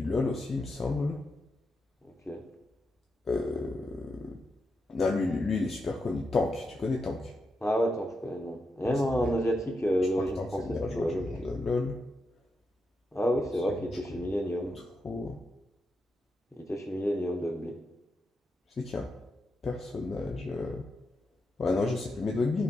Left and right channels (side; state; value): both; normal; correlation 0.85